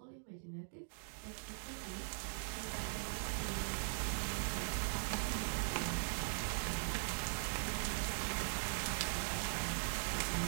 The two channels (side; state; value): left; silent; digital silence